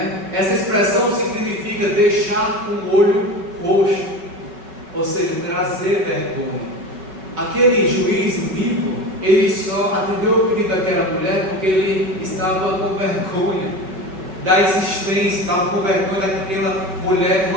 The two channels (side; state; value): left; late; 5.2 ms